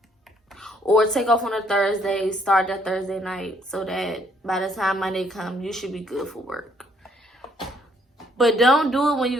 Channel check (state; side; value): normal; both; correlation 0.67